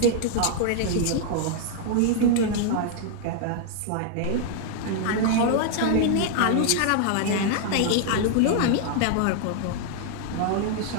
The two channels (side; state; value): both; different; correlation -0.01